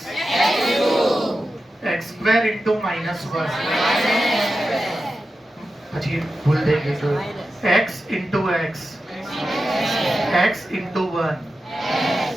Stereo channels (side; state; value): both; normal; correlation 0.91